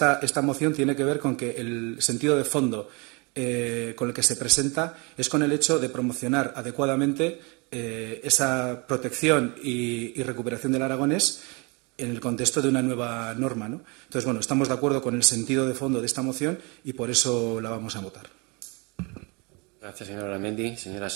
moción tiene que ver con que el sentido de fondo con el que se presenta es con el hecho de promocionar adecuadamente esa protección y recuperación del aragonés en el contexto de una nueva norma, ¿no? Entonces, bueno, estamos de acuerdo con el sentido de fondo de esta moción y por eso la vamos a votar. Gracias, señor Aramendi. Señora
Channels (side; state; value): left; quieter; 29.5 dB